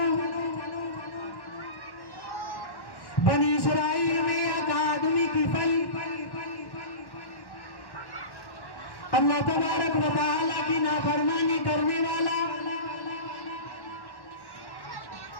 بنی اسرائیل میں ایک آدمی کی پھل اللہ تبارک و تعالیٰ کی نافرمانی کرنے والا،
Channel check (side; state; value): right; late; 1.1 ms